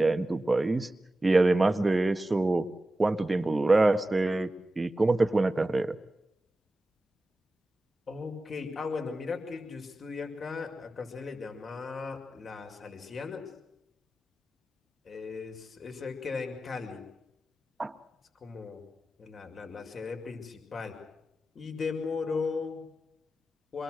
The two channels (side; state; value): both; normal; correlation 0.94